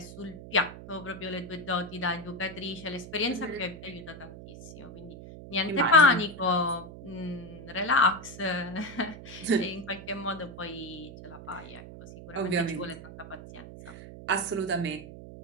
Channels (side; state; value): right; noise; hum, 14 dB below the sound